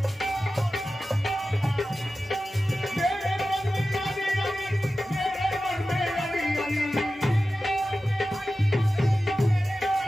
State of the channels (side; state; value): both; normal; correlation 0.94